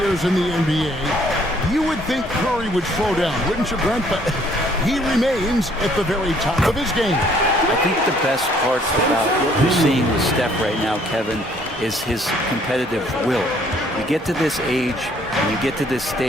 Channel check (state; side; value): normal; both; correlation 0.62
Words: in the NBA, you would think Curry would slow down, wouldn't you, Brent? But he remains at the very top of his game. I think the best part about what we're seeing with Steph right now, Kevin, is his competitive will. You get to this age, and you get to this